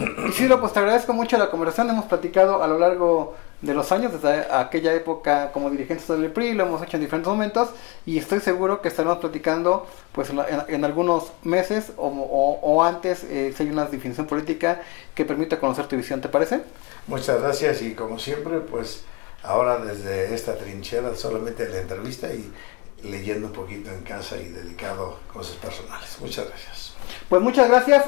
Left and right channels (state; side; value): quieter; right; 26.5 dB